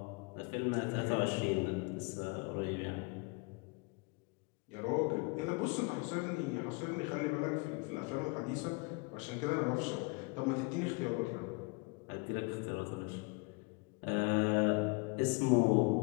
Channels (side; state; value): right; quieter; 29.4 dB